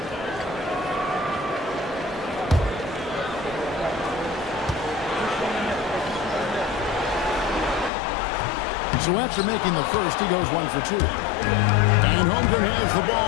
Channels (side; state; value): right; drops out; at 7.9 s